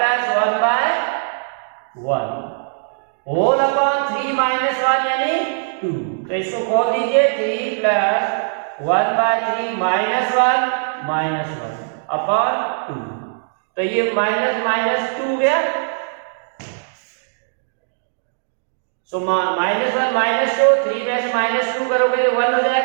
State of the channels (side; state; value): left; silent; digital silence